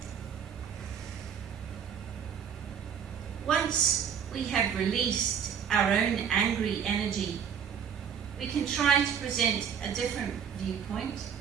Once we have released our own angry energy, we can try to present a different viewpoint,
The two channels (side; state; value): left; quieter; 7.8 dB